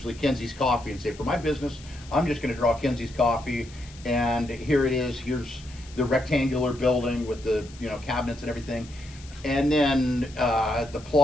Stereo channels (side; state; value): left; noise; hiss, 21 dB below the sound